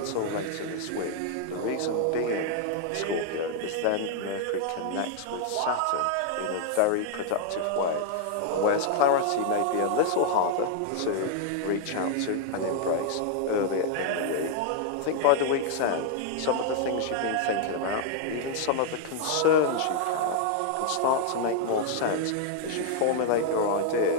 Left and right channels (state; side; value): different; both; correlation 0.00